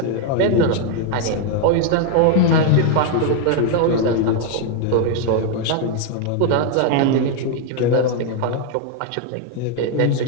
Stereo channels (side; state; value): both; different; correlation 0.00